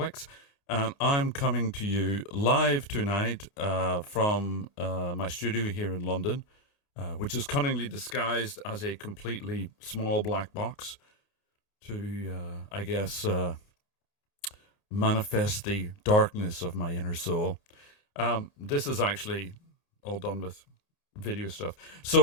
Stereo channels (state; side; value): late; right; 30 ms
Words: and I'm coming to you live tonight from my studio here in London, which is cunningly disguised as a completely small black box to, I guess, manifest the darkness of my inner soul. This is actually all done with video stuff.